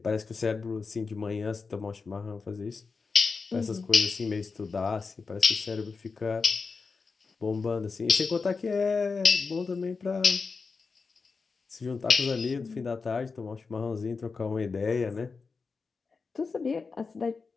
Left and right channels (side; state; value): right; quieter; 4.7 dB